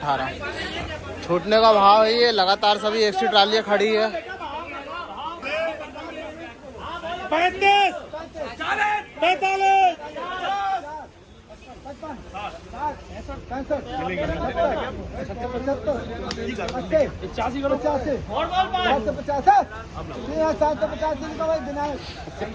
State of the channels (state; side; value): identical; both; correlation 1.00